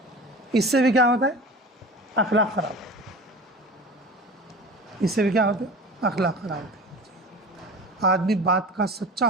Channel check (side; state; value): both; normal; correlation 0.36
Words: इससे भी क्या होता है? अखलाक खराब। इससे भी क्या होता है? अखलाक खराब होते हैं। आदमी बात का सच्चा